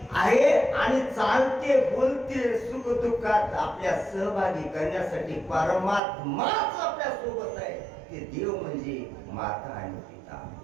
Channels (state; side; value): drops out; left; at 6.0 s